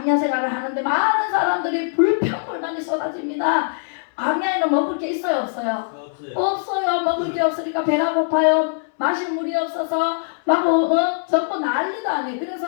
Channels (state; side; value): silent; right; 65 dB below the other